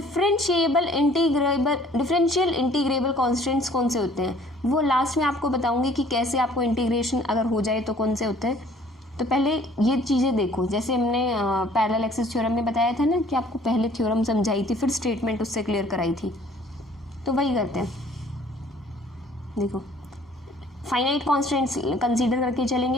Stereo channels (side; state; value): both; normal; correlation 0.55